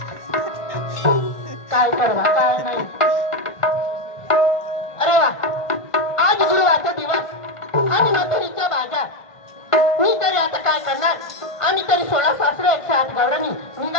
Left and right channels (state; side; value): late; right; 1.5 ms